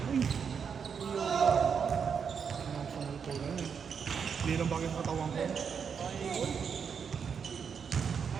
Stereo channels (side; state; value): left; quieter; 6.7 dB